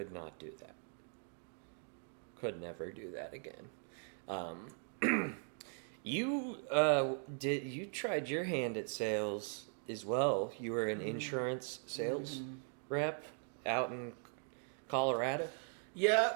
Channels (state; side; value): silent; left; 51 dB below the other